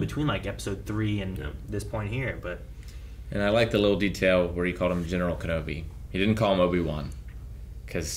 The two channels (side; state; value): both; identical; correlation 1.00